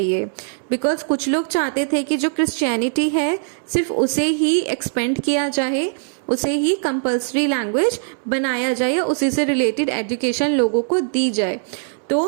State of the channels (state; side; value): silent; left; 63 dB below the other